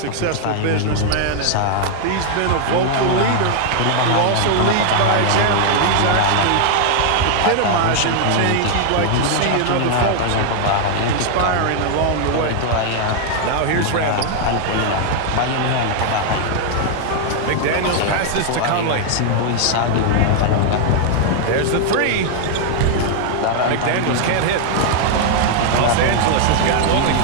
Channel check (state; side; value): different; both; correlation 0.00